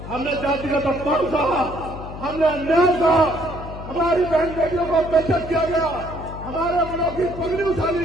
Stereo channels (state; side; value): noise; left; hum, 11 dB below the sound